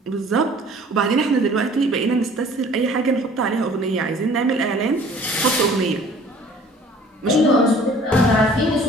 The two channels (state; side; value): normal; both; correlation 0.51